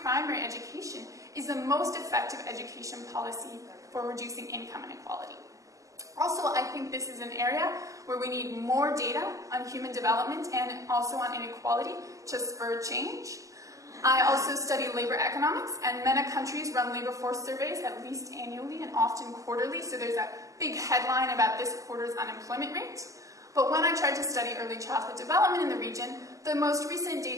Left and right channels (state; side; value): late; left; 0.16 ms